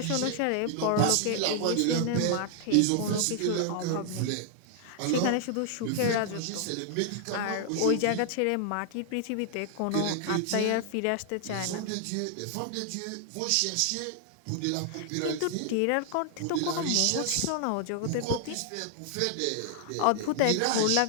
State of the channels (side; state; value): both; different; correlation 0.00